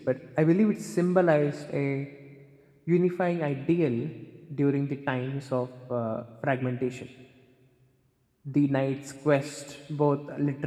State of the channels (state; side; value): identical; both; correlation 1.00